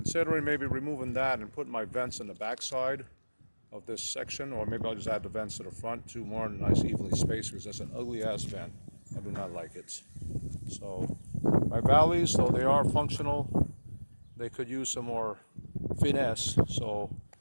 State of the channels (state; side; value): inverted; both; correlation -1.00